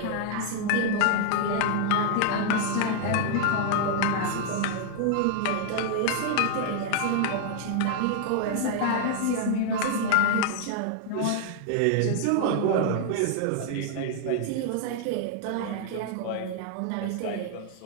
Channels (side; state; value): both; different; correlation 0.00